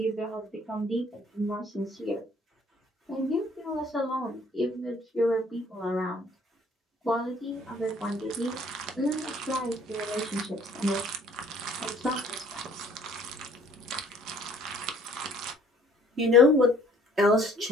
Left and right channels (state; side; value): normal; both; correlation 0.58